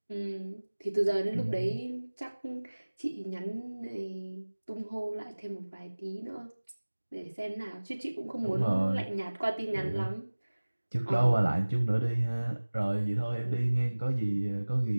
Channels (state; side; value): inverted; both; correlation -1.00